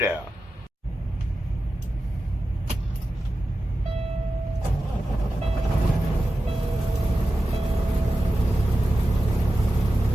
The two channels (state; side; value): normal; both; correlation 0.93